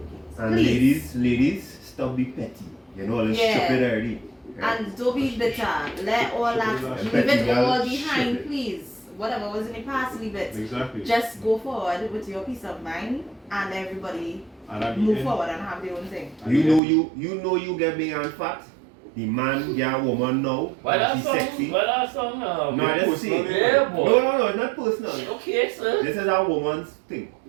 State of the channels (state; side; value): drops out; left; at 16.8 s